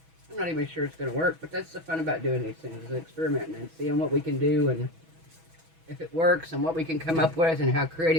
not even sure it's going to work, but that's the fun about doing these things, is experimenting and seeing what we can do and if it works and what we can come up with and how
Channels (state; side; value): late; left; 6.1 ms